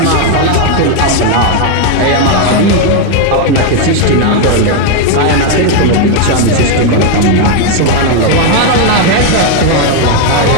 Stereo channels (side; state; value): both; different; correlation 0.01